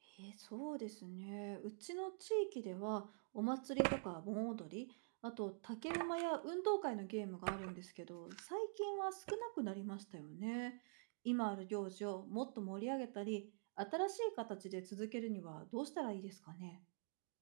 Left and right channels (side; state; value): left; silent; digital silence